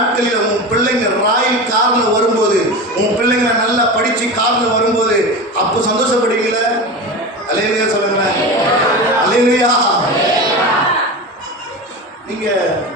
உன் பிள்ளைங்க ராயல் கார்ல வரும்போது, உன் பிள்ளைங்க நல்லா படிச்சு கார்ல வரும்போது அப்போ சந்தோஷப்படுவீங்களா? அல்லேலூயா சொல்லுங்களேன். அல்லேலூயா. நீங்க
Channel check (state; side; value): normal; both; correlation 0.26